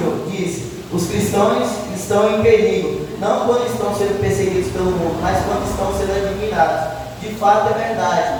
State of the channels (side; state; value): both; identical; correlation 1.00